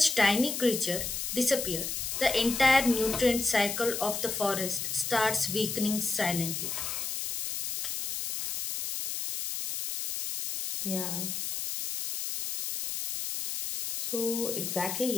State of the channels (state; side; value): noise; left; hiss, 3 dB below the sound